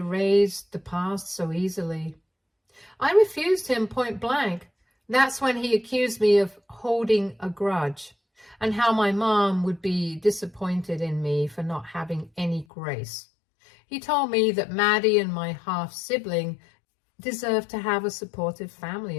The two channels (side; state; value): right; drops out; at 12.7 s